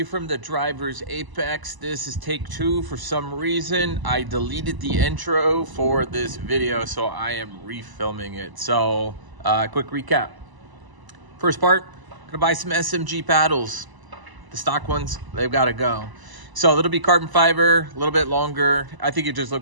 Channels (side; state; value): left; late; 1.0 ms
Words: from the Driver's Apex. This is take 2. For some reason, I deleted the intro for this video, so I am refilming it. So, quick recap. First part, gonna buy some SMG paddles. The stock ones, they've gotta go. So it'll be carbon fiber, a little bit longer. I think it just